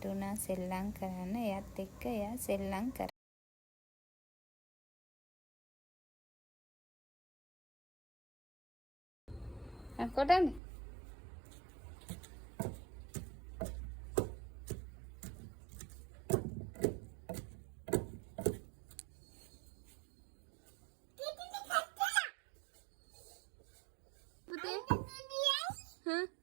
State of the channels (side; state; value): left; drops out; at 10.6 s